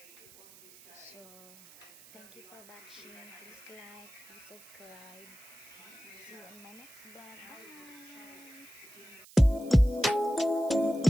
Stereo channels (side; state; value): right; noise; hiss, 21 dB below the sound